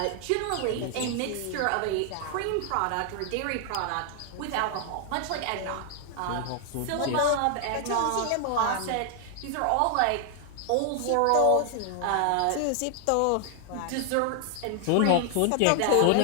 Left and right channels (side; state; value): both; different; correlation 0.00